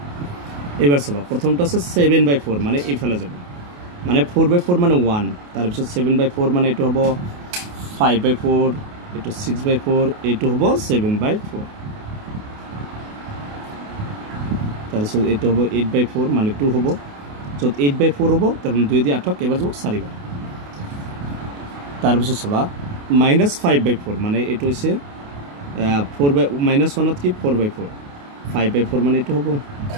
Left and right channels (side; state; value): left; late; 28 ms